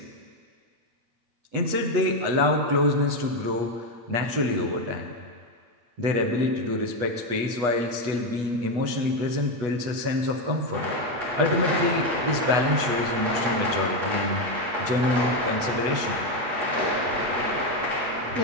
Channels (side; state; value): left; late; 8.2 ms